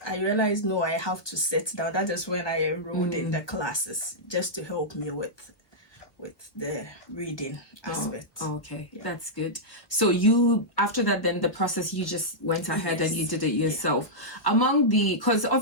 I realized, no, I have to sit down. That is when I enrolled in the classes just to help me with the reading aspect. Okay, yeah. That's good. So you, after that, then the process, you just went ahead and you did it yourself. Yeah. Because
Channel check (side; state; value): right; late; 1.4 ms